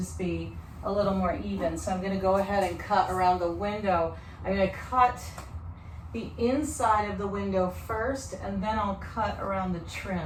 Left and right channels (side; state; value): both; identical; correlation 1.00